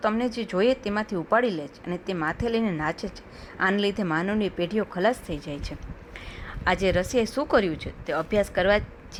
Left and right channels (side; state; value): both; identical; correlation 1.00